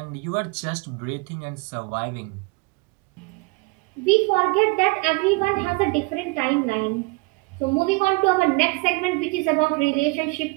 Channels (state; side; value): quieter; left; 27.8 dB